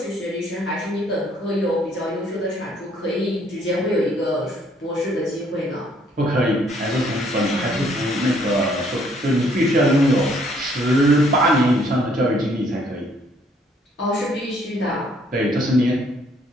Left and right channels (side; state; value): both; normal; correlation 0.65